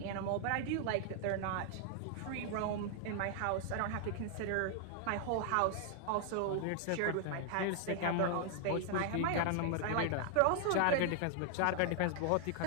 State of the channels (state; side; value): different; both; correlation 0.00